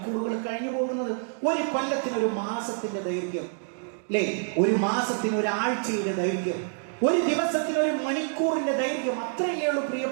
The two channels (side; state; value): left; silent; digital silence